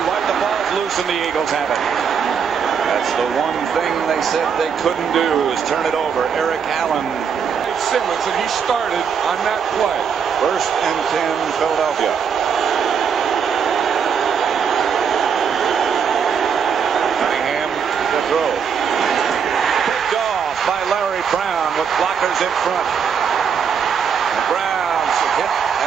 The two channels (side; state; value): left; quieter; 7.0 dB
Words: White. The ball's loose and the Eagles have it. That's the one thing they said they couldn't do is turn it over. Eric Allen. Simmons, and he started on that play. 1st and 10, Philadelphia. Cunningham to throw. Picked off by Larry Brown with blockers in front. And Brown's hit